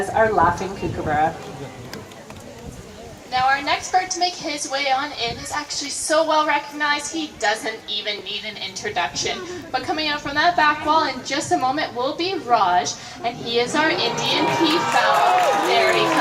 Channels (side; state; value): both; identical; correlation 1.00